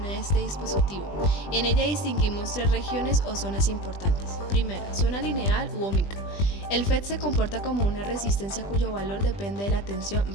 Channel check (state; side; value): late; right; 20 ms